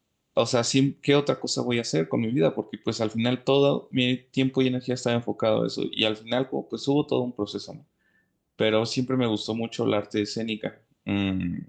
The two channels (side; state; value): both; identical; correlation 1.00